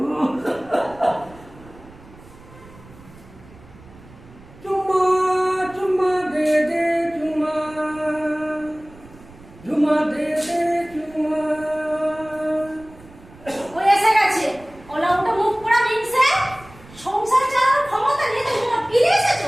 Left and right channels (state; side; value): noise; right; rumble, 22 dB below the sound